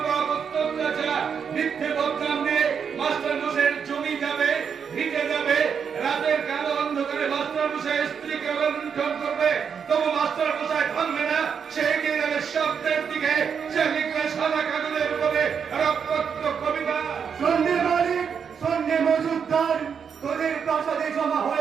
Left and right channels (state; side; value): quieter; left; 6.9 dB